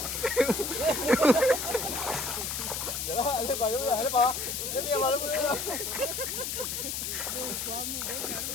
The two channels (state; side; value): noise; left; hiss, 3 dB below the sound